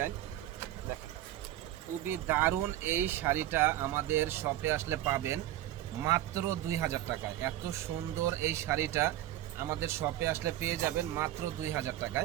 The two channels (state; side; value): quieter; left; 13.9 dB